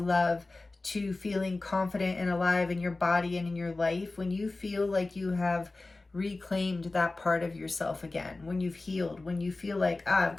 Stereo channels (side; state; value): right; quieter; 3.2 dB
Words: to feeling confident and alive in your body and in your life. When you feel like you have reclaimed that part of yourself again, when you've healed, when you feel like, I've